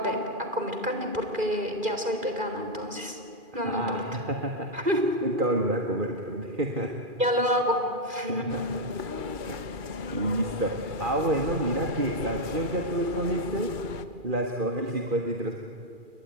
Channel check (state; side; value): late; left; 2.4 ms